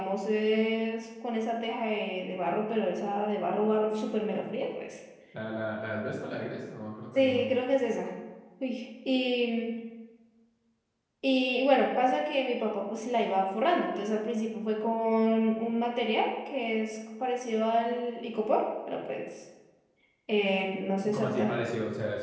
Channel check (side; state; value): both; identical; correlation 1.00